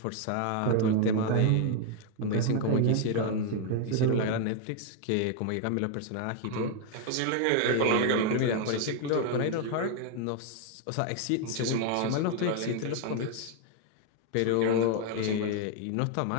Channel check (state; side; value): different; both; correlation 0.00